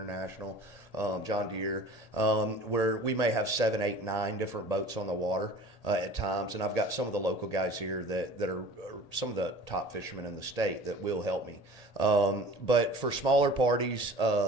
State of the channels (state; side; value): late; right; 1.8 ms